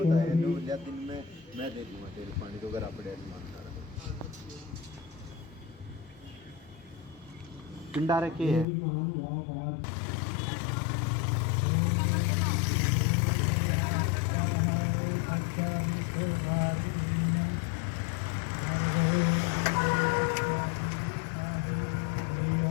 में मैं दे दूंगा तेल पानी तो अगर आप पिंडा रखे है।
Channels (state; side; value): drops out; right; at 8.7 s